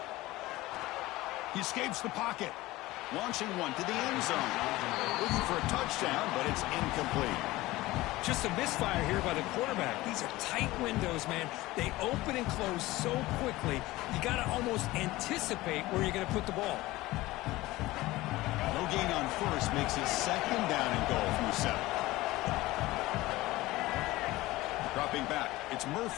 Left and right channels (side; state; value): right; quieter; 18.7 dB